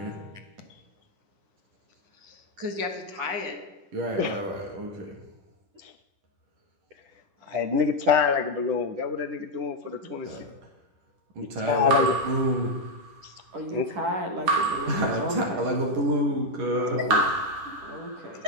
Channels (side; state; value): left; late; 10 ms